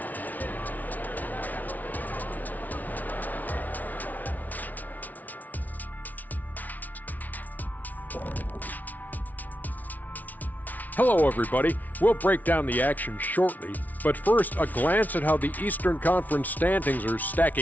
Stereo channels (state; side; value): late; right; 0.077 ms